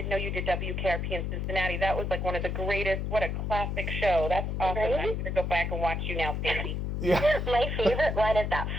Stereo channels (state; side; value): noise; left; hum, 2 dB below the sound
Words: know you did WKRP in Cincinnati. That was like one of the greatest. What a classic show. That's awesome. Right? I'm going to go back and watch you now, Stacy. Yeah. My favorite one is that